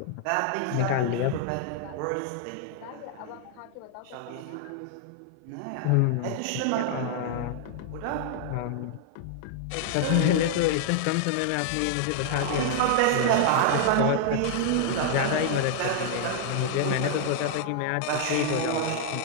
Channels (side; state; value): both; different; correlation -0.01